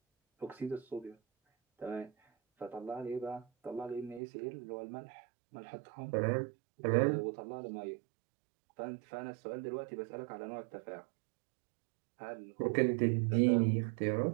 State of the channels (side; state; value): left; drops out; at 4.2 s